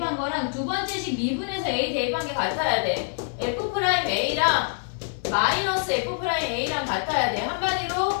거랑 두 번째 식 미분해서 A 대입한 게 같아야 돼. F'A랑 마이너스 F'A랑 같아야 돼.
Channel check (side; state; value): right; silent; 58 dB below the other